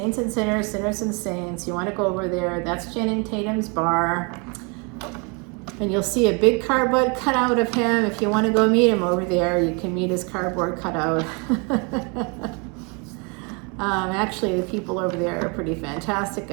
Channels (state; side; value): quieter; left; 32.7 dB